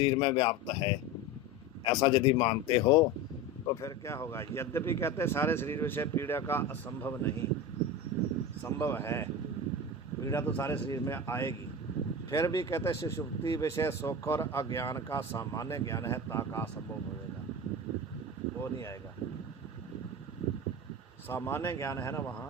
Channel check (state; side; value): normal; both; correlation 0.26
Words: में व्याप्त है, ऐसा यदि मानते हो तो फिर क्या होगा। यद्यपि कहते हैं सारे शरीर विषय पीड़ा का असंभव नहीं, संभव है, पीड़ा तो सारे शरीर में आएगी। फिर भी कहते हैं सुषुप्ति विषय सुख और अज्ञान का सामान्य ज्ञान है, ताका असंभव होएगा, वो नहीं आएगा। सामान्य ज्ञान है ना